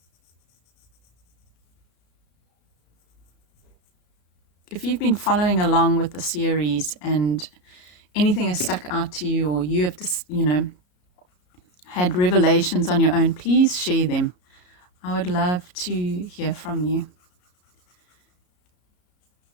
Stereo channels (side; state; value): right; late; 33 ms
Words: If you've been following along with the series and anything has stuck out to you, or you have just, had revelations on your own, please share them. I would love to hear from you.